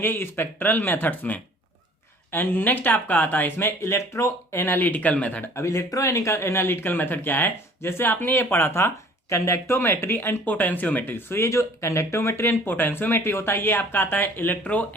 स्पेक्ट्रल मेथड्स में। एंड नेक्स्ट आपका आता है इसमें इलेक्ट्रो एनालिटिकल मेथड। अब इलेक्ट्रो एनालिटिकल मेथड क्या है, जैसे आपने ये पढ़ा था कंडक्टोमेट्री एंड पोटेंशियोमेट्री। सो ये जो कंडक्टोमेट्री एंड पोटेंशियोमेट्री होता है ये आपका आता है इलेक्ट्रो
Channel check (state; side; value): normal; both; correlation 0.51